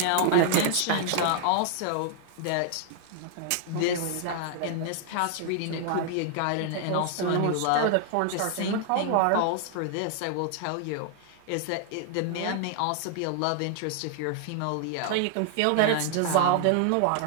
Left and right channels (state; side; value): different; both; correlation 0.00